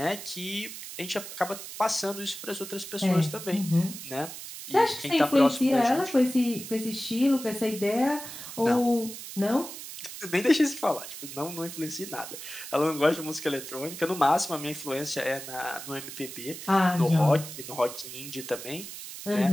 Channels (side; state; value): right; noise; hiss, 11 dB below the sound